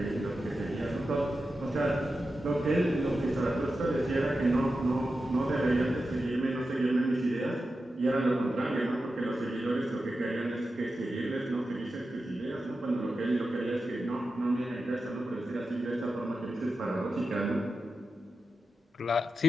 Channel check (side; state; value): both; normal; correlation 0.91